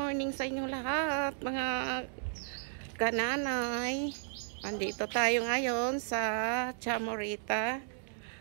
sa inyong lahat, mga kananay. Andito tayo ngayon sa Chamorita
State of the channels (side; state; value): left; silent; digital silence